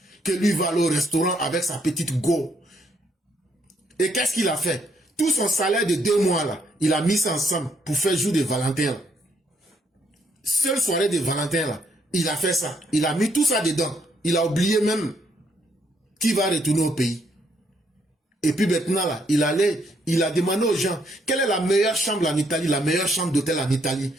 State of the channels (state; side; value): normal; both; correlation 0.72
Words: que lui va aller au restaurant avec sa petite go. Et qu'est-ce qu'il a fait? Tout son salaire de 2 mois là, il a mis ça ensemble pour faire jour de Valentin là. Seule soirée de Valentin là, il a fait ça. Il a mis tout ça dedans. Il a oublié même qu'il va retourner au pays. Et puis maintenant là, il a demandé aux gens, quelle est la meilleure chambre en Italie, la meilleure chambre d'hôtel en Italie.